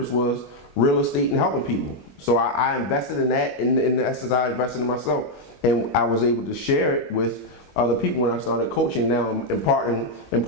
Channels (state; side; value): late; right; 21 ms